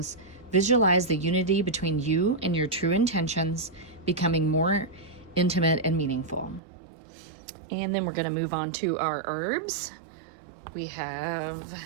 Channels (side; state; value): left; drops out; at 6.6 s